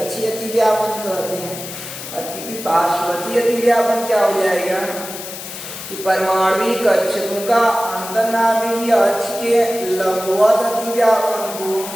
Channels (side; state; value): left; noise; hiss, 10 dB below the sound